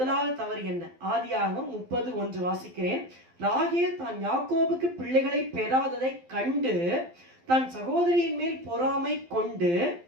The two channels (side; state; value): left; late; 12 ms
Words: தவறு என்ன? ஆதியாகமம் 30:1 வாசிக்கிறேன். ராகேல் தான் யாக்கோபுக்கு பிள்ளைகளை பெறாததை கண்டு தன் சகோதரியின் மேல் பொறாமை கொண்டு